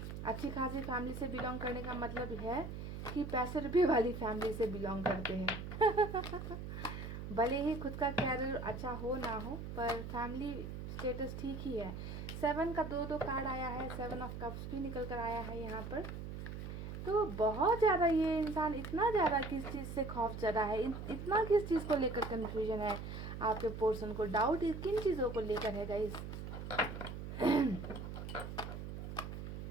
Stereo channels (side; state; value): right; noise; hum, 7 dB below the sound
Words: अच्छी खासी फैमिली से बिलोंग करने का मतलब है कि पैसे रुपए वाली फैमिली से बिलोंग करते हैं। भले ही खुद का कैरियर अच्छा हो ना हो, पर फैमिली स्टेटस ठीक ही है। 7 का दो कार्ड आया है, 7 ऑफ कप्स भी निकल कर आया है यहाँ पर। तो बहुत ज़्यादा ये इंसान, इतना ज़्यादा किस चीज़ से खौफ ज़्यादा है, इतना किस चीज़ को लेकर कन्फ्यूजन है आपके पर्सन को, डाउट किन चीज़ों को लेकर है गाइस।